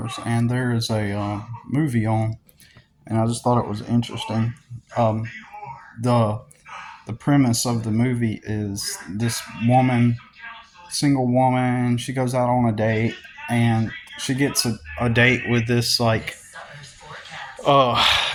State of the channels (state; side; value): identical; both; correlation 1.00